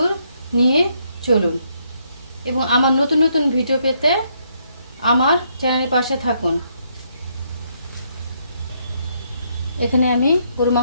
নিয়ে চলুন এবং আমার নতুন নতুন ভিডিও পেতে আমার চ্যানেলের পাশে থাকুন। এখানে আমি গরু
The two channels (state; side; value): inverted; both; correlation -0.74